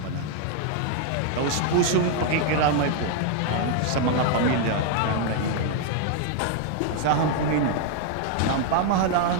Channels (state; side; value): different; both; correlation 0.00